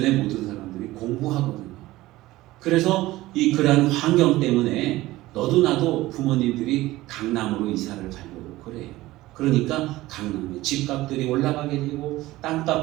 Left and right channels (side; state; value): left; quieter; 17.6 dB